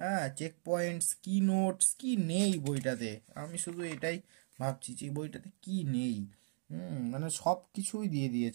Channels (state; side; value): silent; left; digital silence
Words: হ্যাঁ, চেক পয়েন্টস, কি নোটস, কি নেই বইটাতে। আমি শুধু এটাই ভাবছি যে বইটাতে কি নেই। মানে সব কিছুই দিয়ে